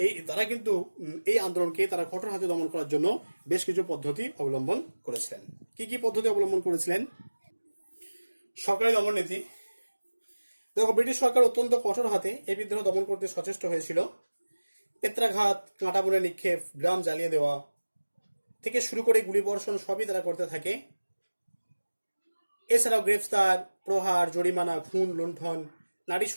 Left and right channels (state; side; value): inverted; both; correlation -1.00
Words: এই আন্দোলনকে তারা কঠোর হাতে দমন করার জন্য বেশ কিছু পদ্ধতি অবলম্বন করেছিলেন। কি পদ্ধতি অবলম্বন করেছিলেন? সরকারি দমন নীতি। দেখো, ব্রিটিশ সরকার অত্যন্ত কঠোর হাতে এই বিদ্রোহ দমন করতে সচেষ্ট হয়েছিল। পেত্রাঘাত, কাঁটা বনে নিক্ষেপ, গ্রাম জ্বালিয়ে দেওয়া থেকে শুরু করে গুলিবর্ষণ সবই তারা করতে থাকে। এছাড়াও গ্রেফতার, প্রহার, জরিমানা, খুন, লুণ্ঠন, নারী